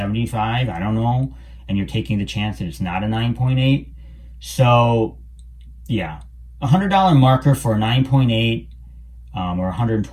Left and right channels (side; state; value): both; identical; correlation 1.00